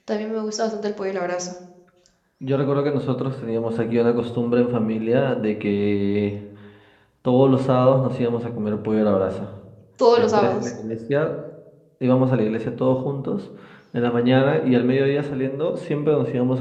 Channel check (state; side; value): identical; both; correlation 1.00